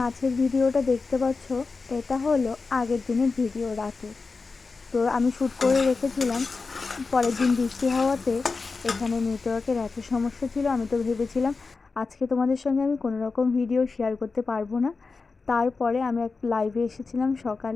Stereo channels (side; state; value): right; quieter; 4.3 dB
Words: ভিডিওটা দেখতে পাচ্ছ, এটা হলো আগের দিনের ভিডিও রাতে। তো আমি শ্যুট করে রেখেছিলাম। পরের দিন বৃষ্টি হওয়াতে এখানে নেটওয়ার্কের এত সমস্যা ছিল, আমি তো ভেবেছিলাম আজকে তোমাদের সঙ্গে আমি কোনো রকম ভিডিও শেয়ার করতে পারবো না। তারপরে আমি এক লাইভে এসেছিলাম